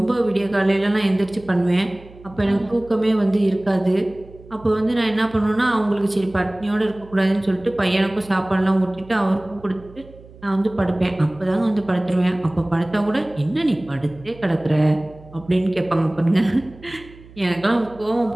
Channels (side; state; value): right; noise; hum, 21 dB below the sound